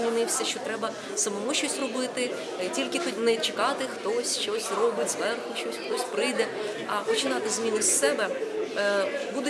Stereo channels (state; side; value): identical; both; correlation 1.00